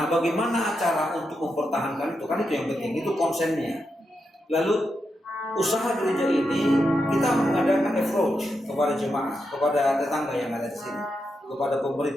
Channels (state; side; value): normal; both; correlation 0.85